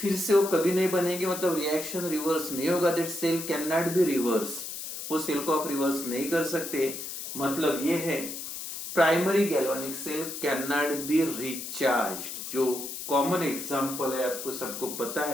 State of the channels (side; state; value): left; noise; hiss, 7 dB below the sound